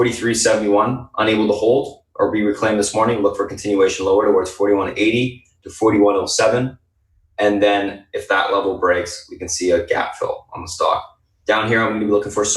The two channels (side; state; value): both; identical; correlation 1.00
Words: unable to hold or be reclaimed this morning, look for continuation lower towards 41.80 to 41.07. And then if that level breaks, we can see a gap fill on the stock. Down here, I'm going to be looking for